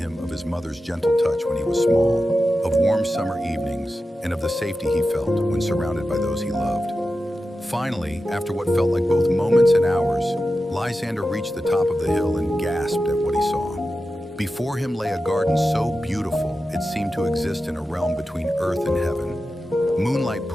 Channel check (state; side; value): normal; both; correlation 0.92